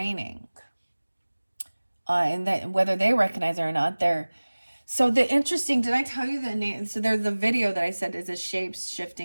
And that whether they recognize it or not, did I tell you the name? So there's the video that I said is a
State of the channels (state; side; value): inverted; both; correlation -1.00